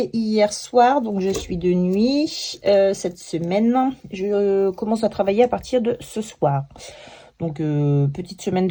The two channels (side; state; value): both; identical; correlation 1.00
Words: hier soir, donc je suis de nuit cette semaine. Je commence à travailler à partir de ce soir. Donc, petite semaine